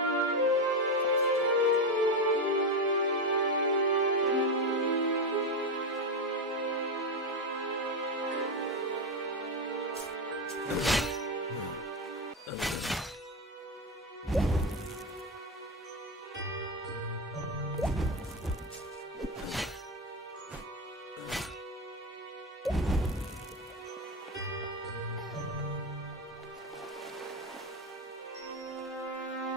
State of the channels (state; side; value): normal; both; correlation 0.12